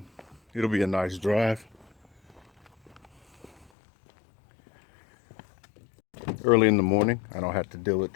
It'll be a nice drive. Early in the morning, I don't have to deal with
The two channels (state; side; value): drops out; right; at 3.7 s